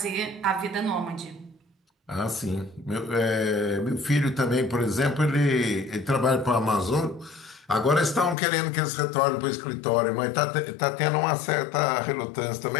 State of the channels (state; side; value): drops out; right; at 8.3 s